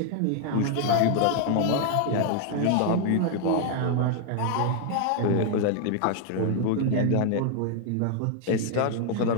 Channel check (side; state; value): both; different; correlation 0.00